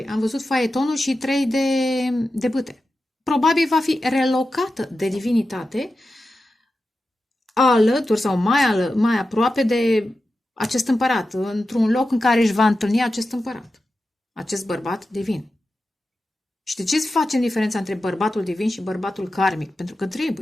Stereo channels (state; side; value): normal; both; correlation 0.92